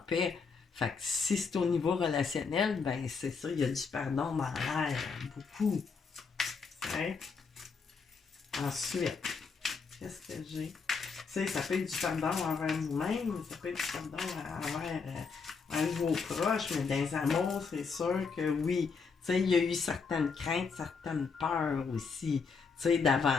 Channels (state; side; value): quieter; right; 5.2 dB